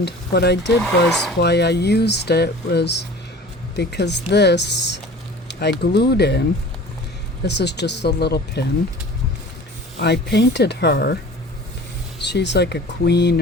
what I did was, why I used it was because this I glued in. This is just a little pin. I painted her. She's like a queen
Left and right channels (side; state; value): both; normal; correlation 0.42